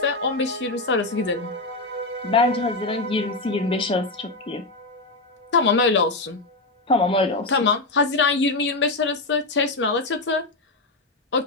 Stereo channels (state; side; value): quieter; right; 3.1 dB